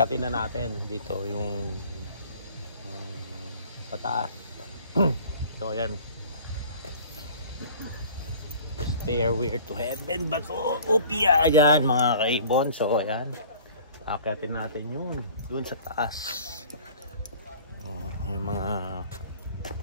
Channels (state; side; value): inverted; both; correlation -0.47